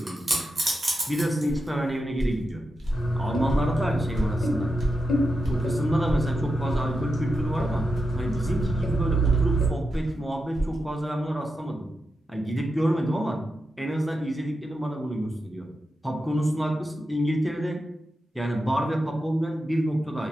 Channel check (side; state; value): both; normal; correlation 0.88